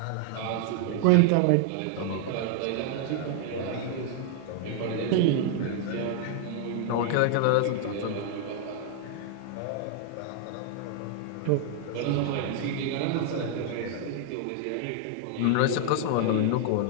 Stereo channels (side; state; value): both; different; correlation 0.00